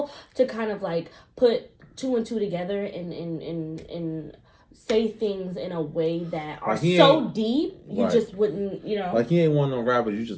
to kind of like put two and two together and say things in a way that are like so deep you just wouldn't, you know. Like he ain't one of them rappers you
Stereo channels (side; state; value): both; identical; correlation 1.00